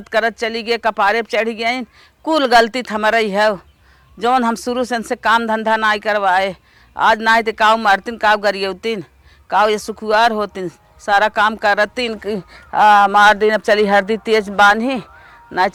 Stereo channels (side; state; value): both; identical; correlation 1.00